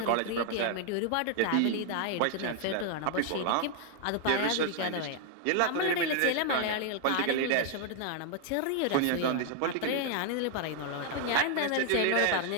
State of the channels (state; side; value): different; both; correlation 0.00